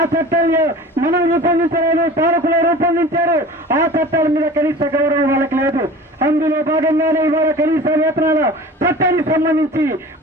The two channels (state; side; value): normal; both; correlation 0.40